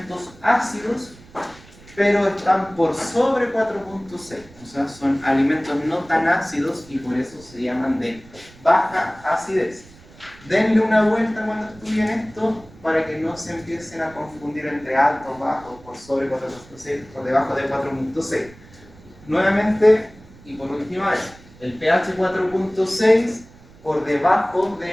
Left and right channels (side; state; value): right; noise; rumble, 23 dB below the sound